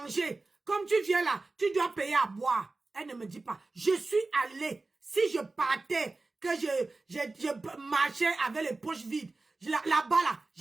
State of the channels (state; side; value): quieter; left; 3.4 dB